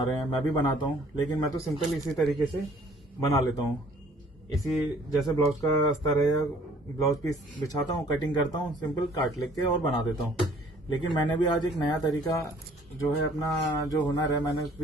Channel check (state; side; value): normal; both; correlation 0.57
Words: रहे हैं, मैं भी बनाता हूं, लेकिन मैं तो सिंपल इसी तरीके से बना लेता हूं। इसी जैसे ब्लाउज का अस्तर है या ब्लाउज पीस बिछाता हूं, कटिंग करता हूं, सिंपल काट लेके और बना देता हूं। लेकिन मैंने भी आज एक नया तरीका जो है, अपना जो हुनर है, मैंने